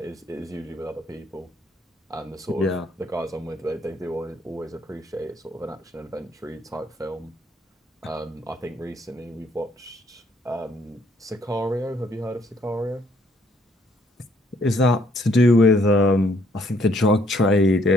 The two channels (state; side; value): normal; both; correlation 0.67